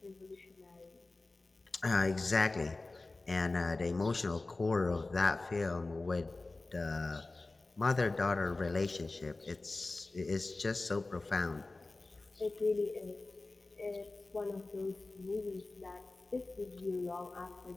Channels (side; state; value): right; quieter; 3.2 dB